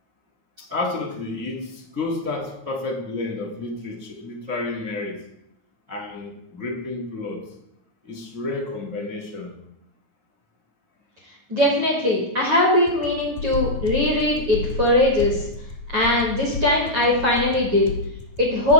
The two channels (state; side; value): late; left; 9.2 ms